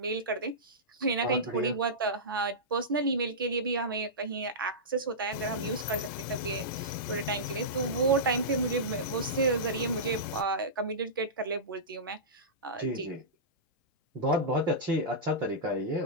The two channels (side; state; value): both; normal; correlation -0.16